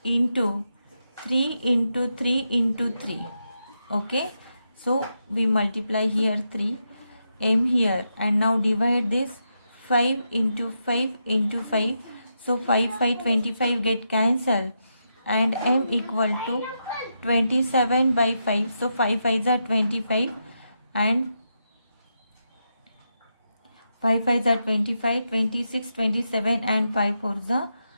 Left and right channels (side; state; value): both; inverted; correlation -0.84